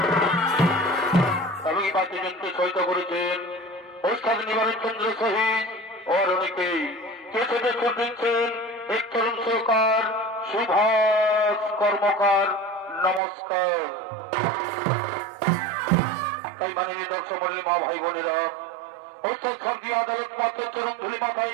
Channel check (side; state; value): left; drops out; at 13.2 s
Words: এবং এই বাদ্যযন্ত্রে সহিত করেছেন ওস্তাদ নিবারণ চন্দ্র সহিত ও অনেকেই কেসে সুর দিচ্ছেন এক তরুণ সরকার সুভাষ কর্মকার। নমস্কার। তাই মাননীয় দর্শক মন্ডলী, মা ভাই বোনেরা, ঐশ্বর শান্তি আদালত পত্র চরম ধুলি